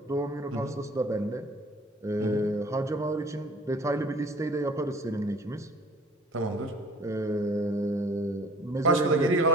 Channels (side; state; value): both; normal; correlation 0.50